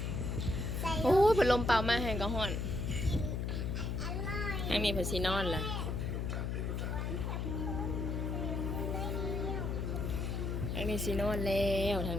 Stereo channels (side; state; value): left; noise; hum, 1 dB below the sound